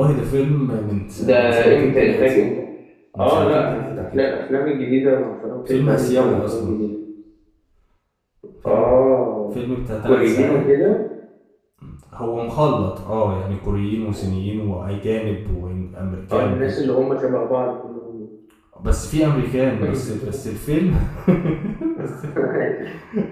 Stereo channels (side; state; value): both; identical; correlation 1.00